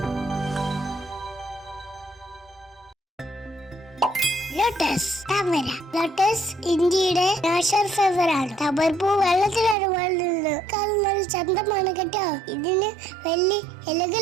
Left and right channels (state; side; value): drops out; left; at 9.8 s